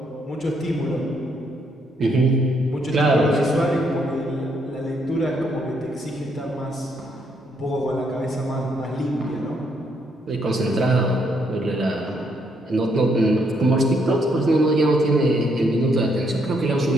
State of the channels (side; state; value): both; normal; correlation 0.73